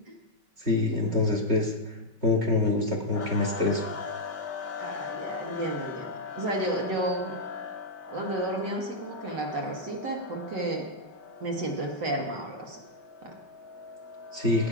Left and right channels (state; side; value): late; left; 5.3 ms